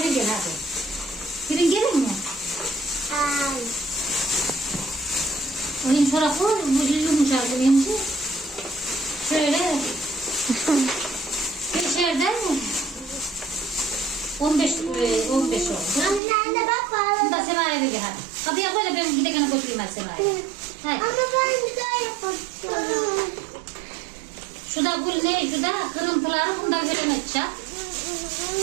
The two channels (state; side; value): drops out; left; at 16.2 s